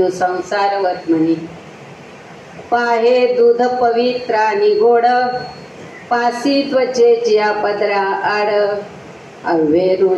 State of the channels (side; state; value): both; identical; correlation 1.00